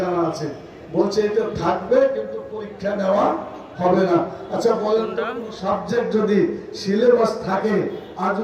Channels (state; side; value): identical; both; correlation 1.00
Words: জানা আছে, বলছে এটা থাকবে কিন্তু পরীক্ষা নেওয়া হবে না। আচ্ছা বলেন তো, সাবজেক্ট যদি সিলেবাস থাকে আর